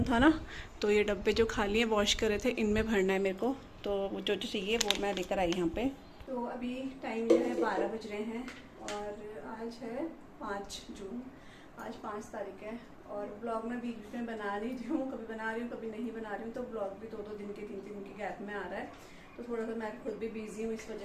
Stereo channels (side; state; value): both; identical; correlation 1.00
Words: था ना, तो ये डब्बे जो खाली हैं वॉश करे थे, इनमें भरना है मेरे को। तो जो चाहिए वो मैं लेकर आई यहाँ पे। तो अभी टाइम जो है 12 बज रहे हैं और आज है 5 जून, आज 5 तारीख है। और ब्लॉग मैं बीच में बना रही हूँ, कभी बना रही हूँ कभी नहीं बना रही हूँ, तो ब्लॉग भी 2-2 दिन के 3-3 दिन के गैप में आ रहा है। तो थोड़ा सा मैं खुद भी बिजी हूँ इस